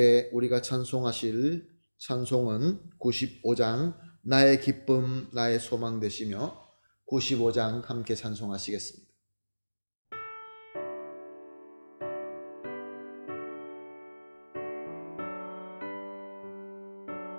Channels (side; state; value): both; inverted; correlation -1.00